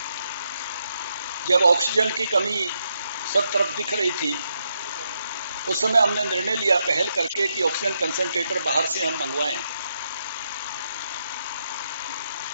जब ऑक्सीजन की कमी सब तरफ दिख रही थी, उस समय हमने निर्णय लिया पहल करके कि ऑक्सीजन कंसंट्रेटर बाहर से हम मंगवाएं,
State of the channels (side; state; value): both; inverted; correlation -0.80